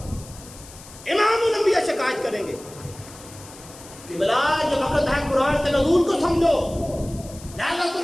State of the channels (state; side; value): noise; left; hiss, 19 dB below the sound